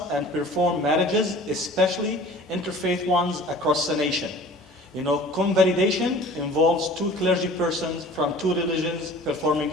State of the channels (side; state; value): both; normal; correlation 0.45